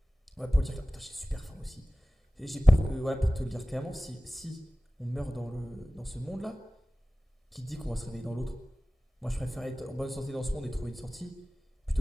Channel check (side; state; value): both; normal; correlation 0.97